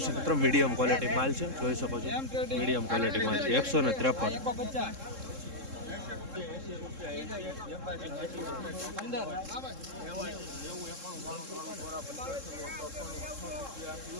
મિત્રો મીડિયમ ક્વોલિટી માલ છે જોઈ શકો છો મીડિયમ ક્વોલિટી માલ છે 153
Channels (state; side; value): late; left; 3.7 ms